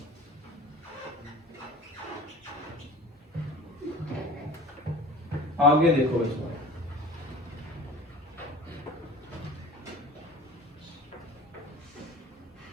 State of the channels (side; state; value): both; normal; correlation 0.41